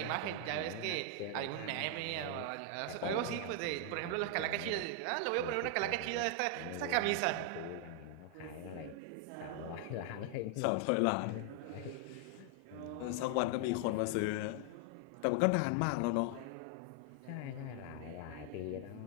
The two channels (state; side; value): different; both; correlation 0.00